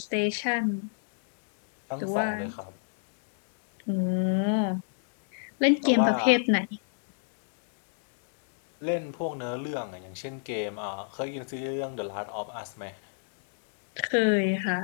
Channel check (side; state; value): right; silent; digital silence